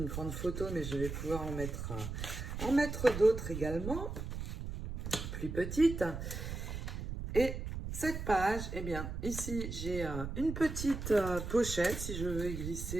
grande photo, mais je vais pouvoir en mettre d'autres également, plus petites. Et cette page, eh bien, ici, j'ai une petite pochette. Si je veux y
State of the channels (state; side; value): noise; right; rumble, 5 dB below the sound